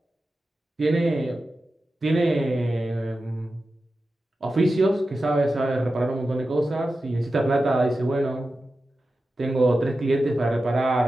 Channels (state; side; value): normal; both; correlation 0.92